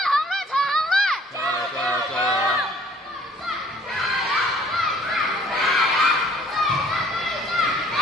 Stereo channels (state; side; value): normal; both; correlation 0.57